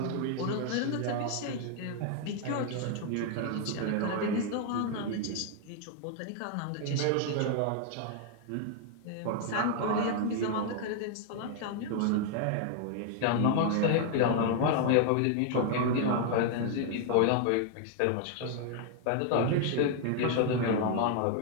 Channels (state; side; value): different; both; correlation 0.00